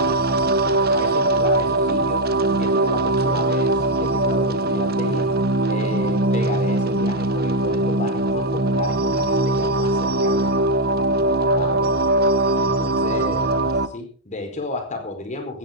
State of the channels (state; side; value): normal; both; correlation 0.00